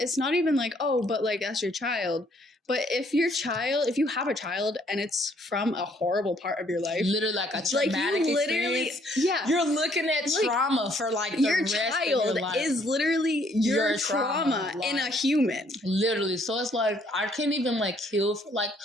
not even like, oh, but like that's your child. But if you have a child and it's from a horrible part of your life, literally like a traumatic experience, you're looking at trauma for like the your rest child of your life. is literally your trauma like, in a human. Literally, so it's like I can't even like heal. Like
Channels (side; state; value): both; normal; correlation 0.65